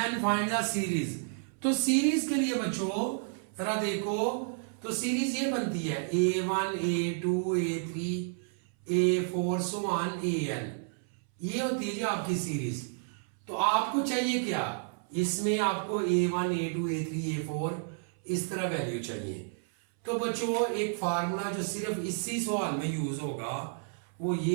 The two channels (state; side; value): silent; left; 57 dB below the other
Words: the series. तो सीरीज के लिए बच्चों जरा देखो, तो सीरीज ये बनती है a1 a2 a3 a4 so on an, ये होती है जी आपकी सीरीज। तो आपको चाहिए क्या, इसमें आपको a1 a2 a3 a4 इस तरह वैल्यू चाहिए। तो बच्चों एक फार्मूला जो सिर्फ इसी सवाल में यूज होगा वो